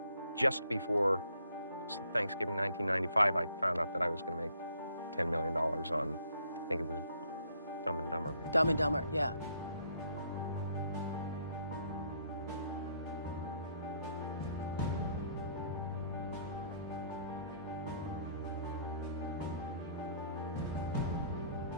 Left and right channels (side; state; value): both; inverted; correlation -0.66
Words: just before Thanksgiving 1995, I found out that I was going to make $10 million on, I think it was Dumb and Dumber. Maybe. Dumb and Dumber, yeah.